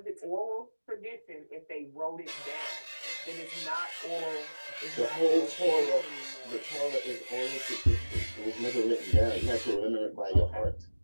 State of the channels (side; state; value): both; inverted; correlation -1.00